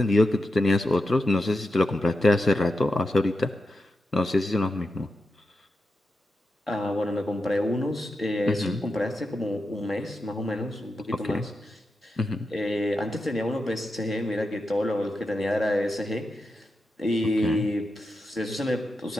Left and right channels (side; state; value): both; normal; correlation 0.88